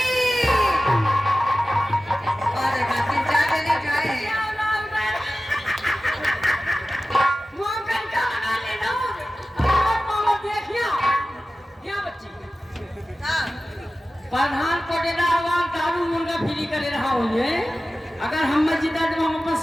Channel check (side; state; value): both; normal; correlation 0.95